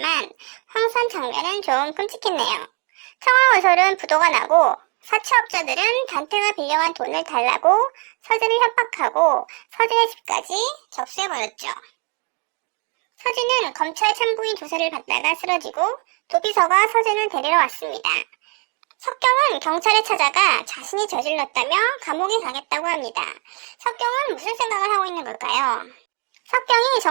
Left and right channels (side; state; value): left; quieter; 33.3 dB